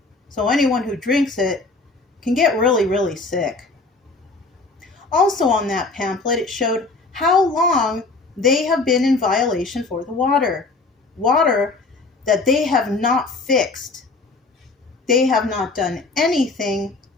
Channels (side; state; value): right; quieter; 3.6 dB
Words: So anyone who drinks it can get really, really sick. Also on that pamphlet, it showed how long they have been in violation for the water. Water that they have not fixed. They have not done anything